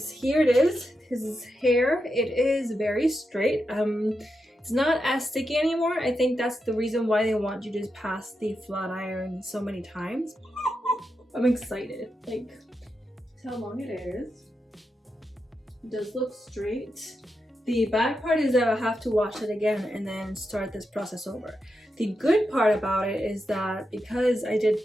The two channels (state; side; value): normal; both; correlation 0.87